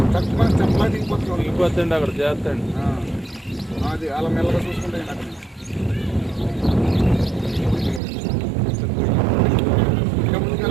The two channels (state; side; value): drops out; left; at 8.0 s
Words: తక్కువ చెప్పలా దిగిపోతుంది అక్కడ చేస్తాండి. అది అలా మెల్లగా చూసుకుంటే